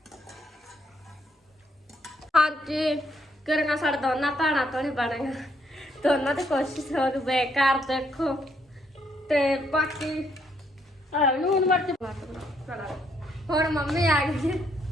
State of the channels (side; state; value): both; normal; correlation 0.72